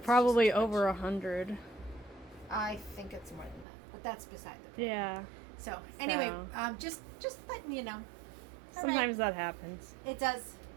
Probably just too over much. 100. I think it's more than that, but that's beside the point. Yeah. So anyway, So. just letting you know. All right. Sometimes that happens. It does.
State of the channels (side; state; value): left; drops out; at 3.7 s